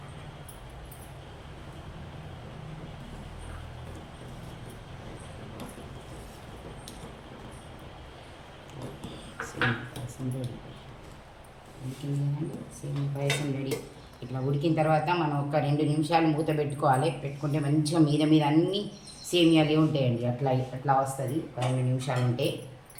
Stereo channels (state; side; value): identical; both; correlation 1.00